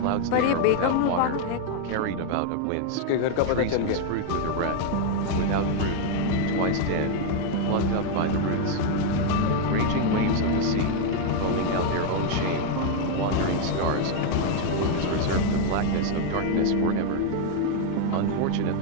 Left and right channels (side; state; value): both; different; correlation 0.01